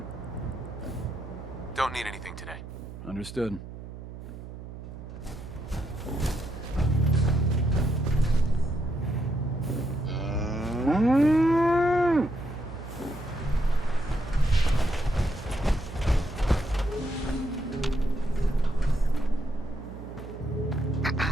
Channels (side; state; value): right; noise; hum, 12 dB below the sound